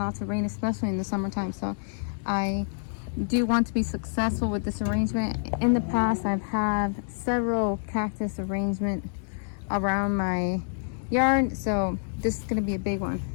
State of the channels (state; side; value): silent; right; digital silence